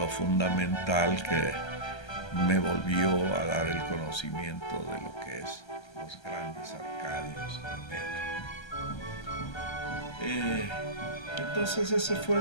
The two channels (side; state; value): right; late; 1.3 ms